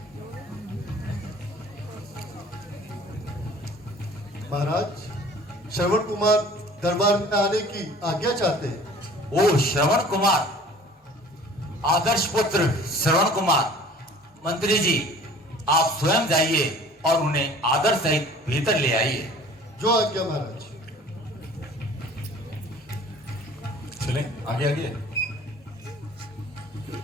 महाराज, श्रवण कुमार दरबार में आने की आज्ञा चाहते हैं। ओ श्रवण कुमार, आदर्श पुत्र श्रवण कुमार, मंत्री जी आप स्वयं जाइए और उन्हें आदर सहित भीतर ले आइए। जो आज्ञा महाराज। चलें आगे आगे।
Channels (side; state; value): both; normal; correlation 0.48